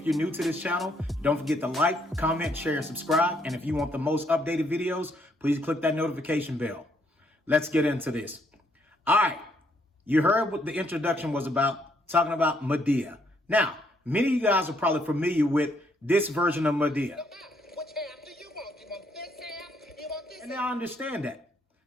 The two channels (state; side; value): normal; both; correlation 0.71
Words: you're new to this channel, don't forget to like, comment, share, and subscribe. And if you want the most updated videos, please click that notification bell. Let's get into this. All right, you heard what the introduction was about, talking about Madea. Now, many of you guys are probably familiar with this version of Madea. Which half do you want? You want this half? You want this And I understand that.